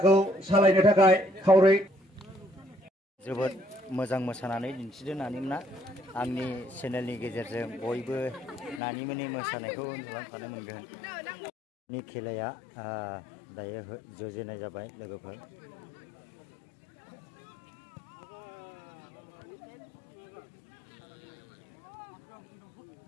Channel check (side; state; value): right; drops out; at 8.8 s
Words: सालायनो थाखाय खावलाय। जोबोद मोजां मोसानानै दिन्थिदों नानिमोना। आंनि चेनेलनि गेजेरजों बयबो नानिमोननि मोसानायखौ नुलांफानो मोनगोन। नि खेलाया दायो जुरिजेननाय जाबाय लोगोफोर।